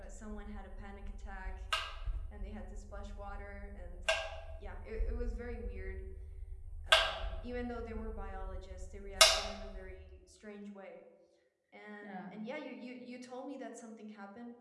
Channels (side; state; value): both; identical; correlation 1.00